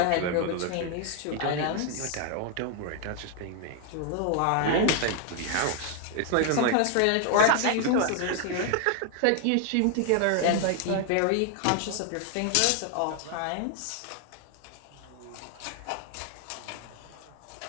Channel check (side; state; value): both; different; correlation 0.00